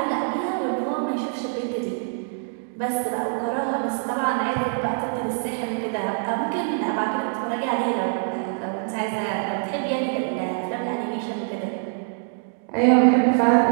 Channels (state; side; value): silent; left; digital silence